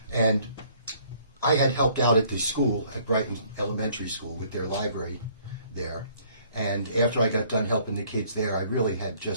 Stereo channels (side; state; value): both; inverted; correlation -0.60